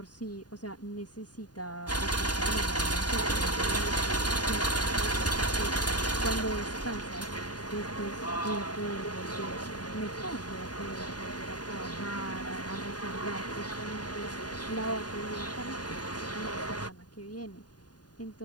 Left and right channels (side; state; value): right; late; 0.69 ms